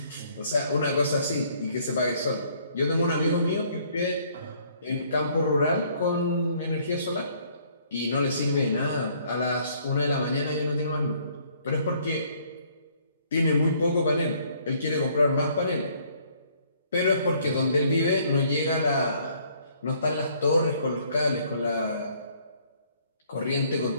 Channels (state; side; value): inverted; both; correlation -0.63